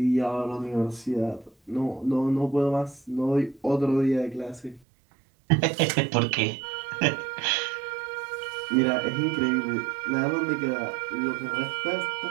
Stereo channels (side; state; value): left; drops out; at 4.8 s